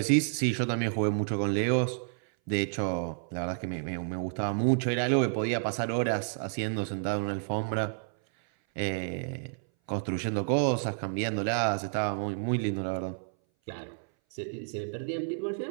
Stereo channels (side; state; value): left; silent; 58 dB below the other